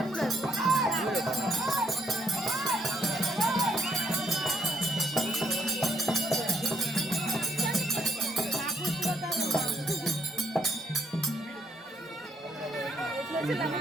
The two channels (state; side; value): normal; both; correlation 0.71